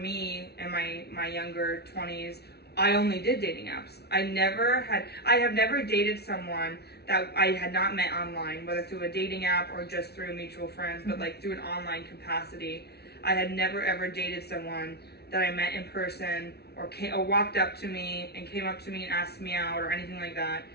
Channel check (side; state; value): right; late; 0.48 ms